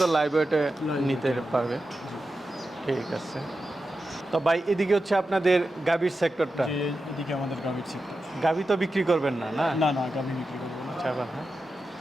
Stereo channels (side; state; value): both; normal; correlation 0.91